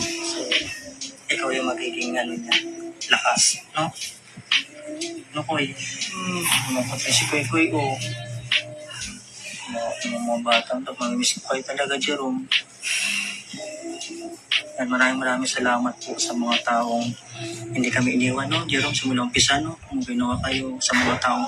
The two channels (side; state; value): both; identical; correlation 1.00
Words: So, ikaw yung magiging lakas, no? No, Koy? Napatay si Koy, oh. Mga batang ito, mamimiss ko kayo talaga, Jerome. At maraming salamat po sa mga taong hindi kami iniwan, no? Jerome, simula umpisa, no? Kung ginawa kayo sa mga taong